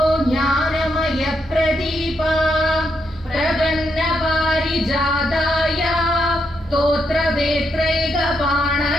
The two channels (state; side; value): normal; both; correlation 0.80